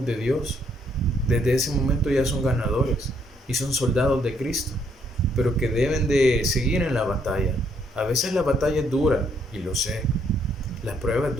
de Dios. Desde ese momento ya son ganadores y son soldados de Cristo, pero que deben de seguir en la batalla. A veces la batalla es dura, y lo sé. La prueba es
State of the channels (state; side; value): normal; both; correlation 0.70